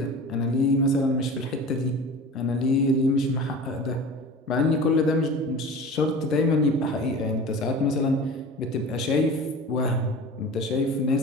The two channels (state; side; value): normal; both; correlation 0.37